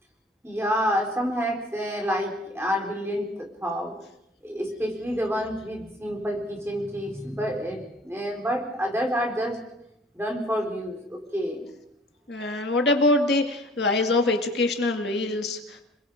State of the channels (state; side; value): normal; both; correlation 0.52